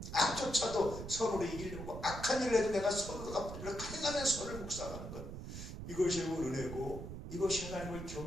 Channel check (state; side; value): noise; right; rumble, 8 dB below the sound